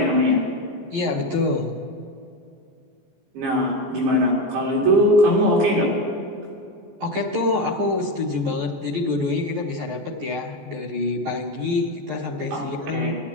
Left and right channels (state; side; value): late; left; 14 ms